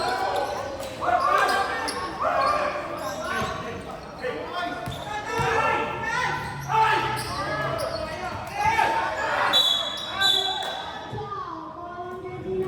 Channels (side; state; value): both; identical; correlation 1.00